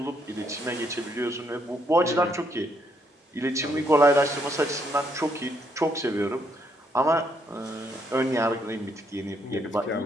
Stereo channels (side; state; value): both; normal; correlation 0.74